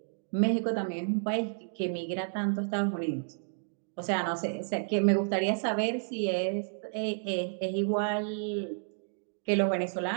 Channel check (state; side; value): silent; left; digital silence